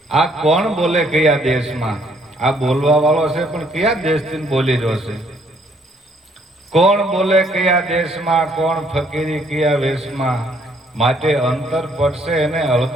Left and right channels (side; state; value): both; normal; correlation 0.66